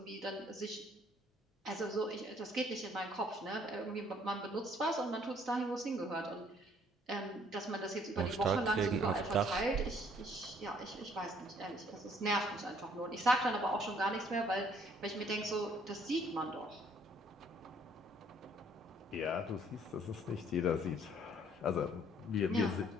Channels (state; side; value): normal; both; correlation 0.62